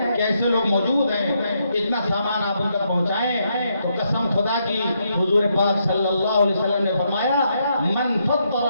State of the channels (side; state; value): both; inverted; correlation -0.78